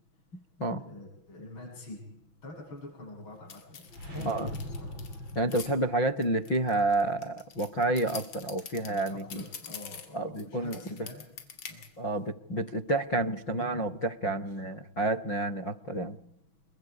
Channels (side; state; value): right; late; 6.2 ms